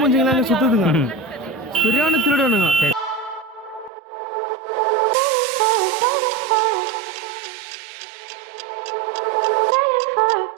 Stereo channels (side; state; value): left; drops out; at 3.9 s